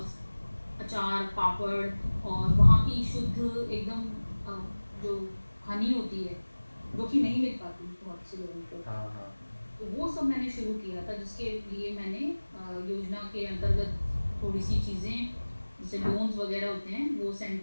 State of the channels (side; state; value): both; inverted; correlation -1.00